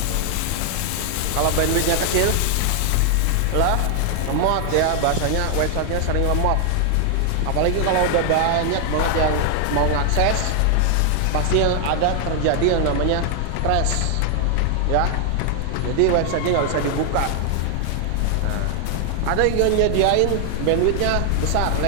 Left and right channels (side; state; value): both; different; correlation 0.00